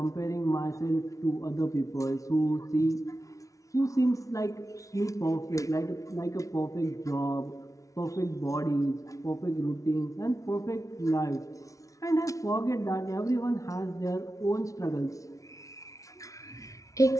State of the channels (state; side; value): late; right; 0.16 ms